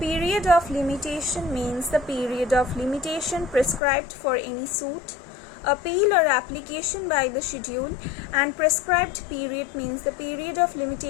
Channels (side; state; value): right; drops out; at 3.8 s